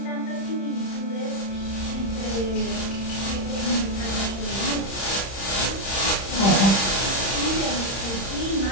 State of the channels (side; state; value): right; late; 31 ms